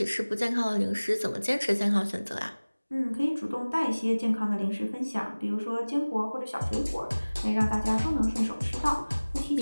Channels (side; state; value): both; inverted; correlation -1.00